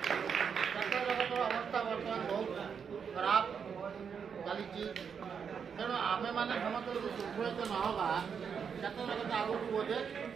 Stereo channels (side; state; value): left; quieter; 6.8 dB